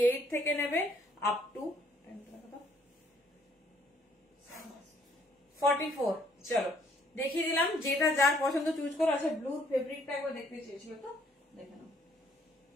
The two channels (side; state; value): both; normal; correlation 0.64